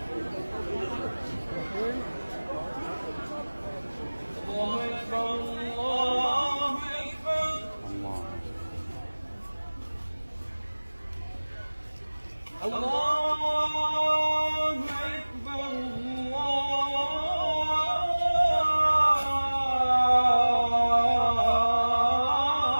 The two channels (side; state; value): both; inverted; correlation -1.00